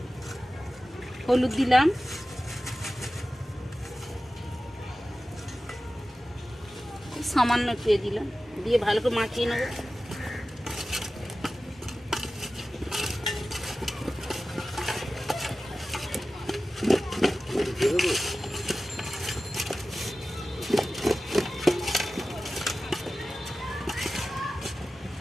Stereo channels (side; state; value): both; normal; correlation 0.95